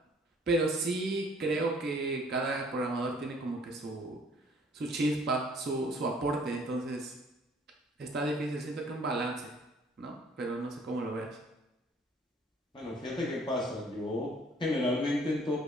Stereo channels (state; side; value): normal; both; correlation 0.58